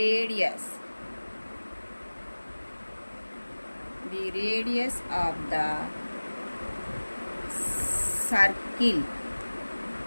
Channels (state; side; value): inverted; both; correlation -1.00